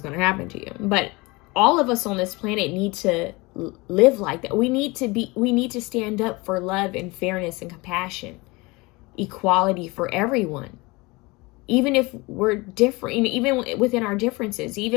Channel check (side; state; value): right; quieter; 24.3 dB